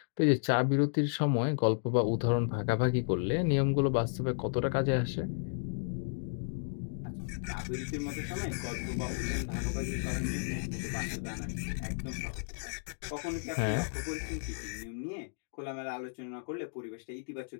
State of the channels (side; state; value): right; silent; digital silence